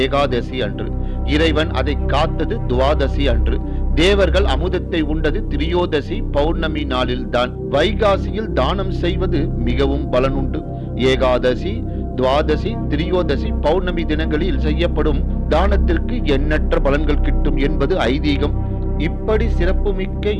ஏகாதசி அன்று. இறைவன் அதை காத்தது துவாதசி அன்று. தேவர்கள் அமுதத்தை உண்டது திரியோதசி பௌர்ணமி நாளில்தான். வைகாசியில் தானம் செய்வது மிகவும் பலனுண்டு. ஏகாதசி, துவாதசி, திரியோதசி பௌர்ணமி தினங்களில் செய்யப்படும் தானத்திற்கு எண்ணற்ற பலன்கள் கிட்டும் என்பது ஐதீகம். இப்படி சிறப்புமிக்க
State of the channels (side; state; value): both; identical; correlation 1.00